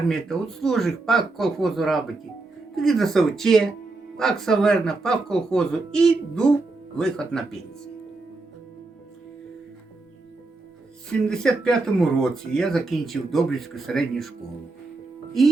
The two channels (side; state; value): left; quieter; 3.4 dB